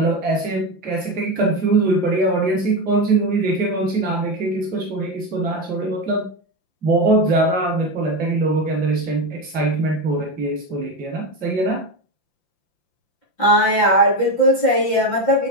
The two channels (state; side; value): late; right; 5.8 ms